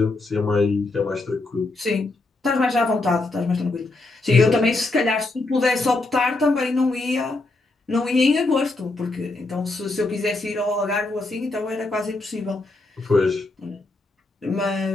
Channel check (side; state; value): right; quieter; 3.1 dB